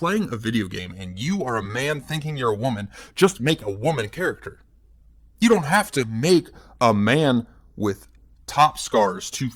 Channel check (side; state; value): both; identical; correlation 1.00